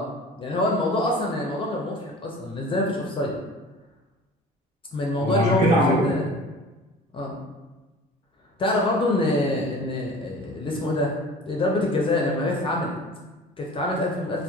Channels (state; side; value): normal; both; correlation 0.42